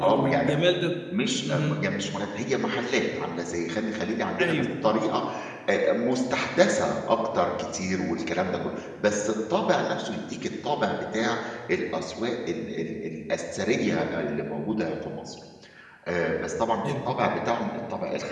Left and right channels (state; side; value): identical; both; correlation 1.00